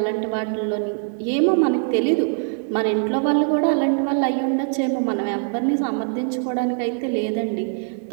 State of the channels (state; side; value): silent; left; 64 dB below the other